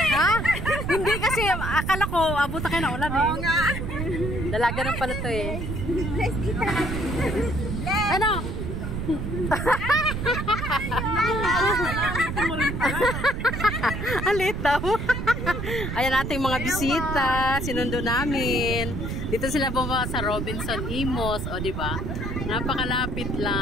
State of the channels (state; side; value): noise; right; rumble, 4 dB below the sound